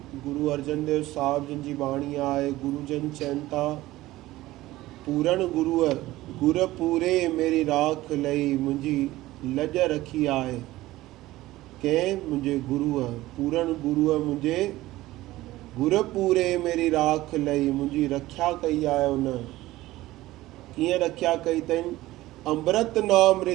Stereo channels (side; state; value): left; quieter; 17.1 dB